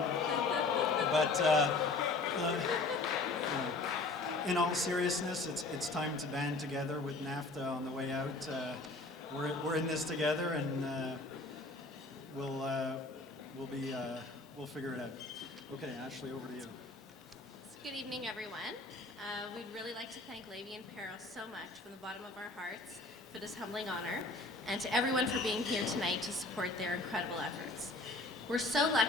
you know, in all seriousness, it's time to band together with NAFTA on the way out. We're in this together, and we'll figure it out. Okay, Ashley, over to you. Good evening, everyone. We'd really like to thank Levy and Peril so much from the bottom of our hearts for this humbling honor, and to everyone for being here tonight to support their incredible efforts. We're so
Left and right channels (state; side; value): quieter; right; 3.3 dB